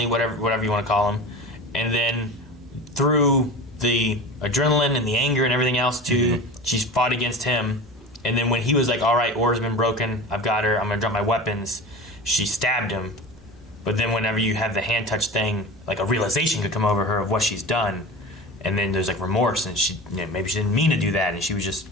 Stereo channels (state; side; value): normal; both; correlation 0.32